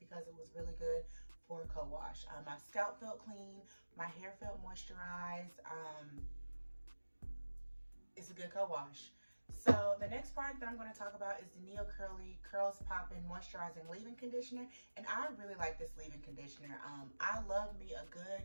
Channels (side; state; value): both; inverted; correlation -1.00